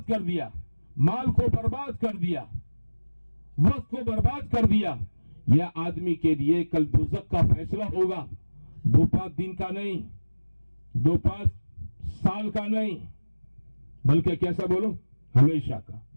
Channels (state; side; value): inverted; both; correlation -1.00